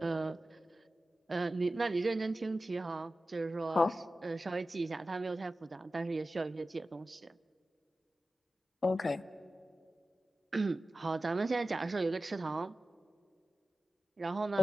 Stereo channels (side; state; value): both; normal; correlation 0.95